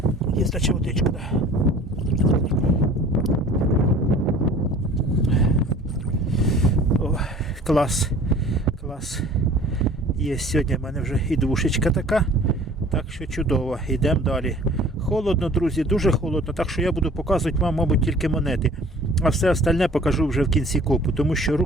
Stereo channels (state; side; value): normal; both; correlation 0.48